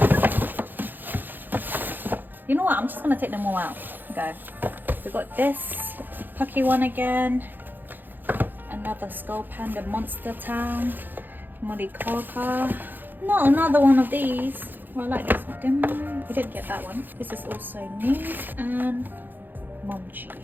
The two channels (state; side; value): late; left; 0.089 ms